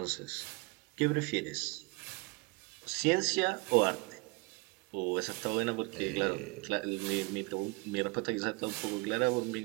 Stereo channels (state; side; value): quieter; left; 26.4 dB